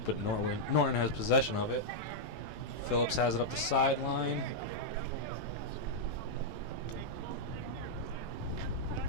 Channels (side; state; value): right; late; 18 ms